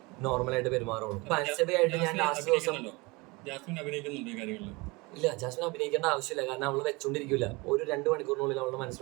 നോർമലായിട്ട് പെരുമാറുള്ളൂ. ഇപ്പൊ അൻസബയായിട്ട് ഞാൻ ലാസ്റ്റ് ദിവസം ഇല്ല, ജാസ്മിൻ അഭിനയിക്കേണ്ട ആവശ്യമില്ല. കാരണം അവള് വെച്ചോണ്ടിരിക്കില്ല. ഒരു 2 മണിക്കൂറിനുള്ളിൽ അവളുടെ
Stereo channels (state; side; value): quieter; left; 25.2 dB